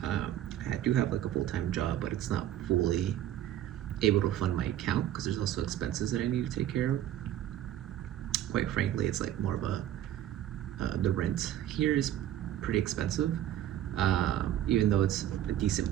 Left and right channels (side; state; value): left; quieter; 11.9 dB